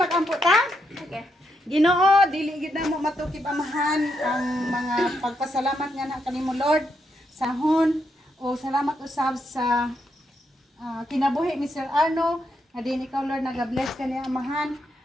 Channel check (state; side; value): normal; both; correlation 0.80